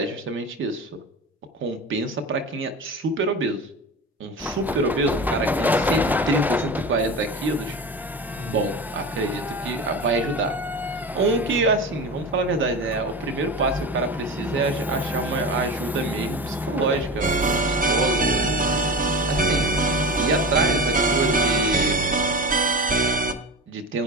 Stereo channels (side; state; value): both; normal; correlation 0.28